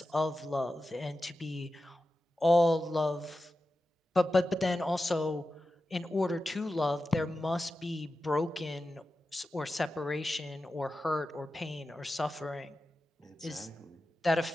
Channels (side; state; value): both; normal; correlation 0.92